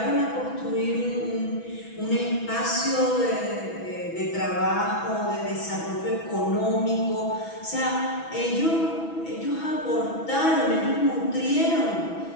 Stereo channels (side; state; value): right; late; 6.1 ms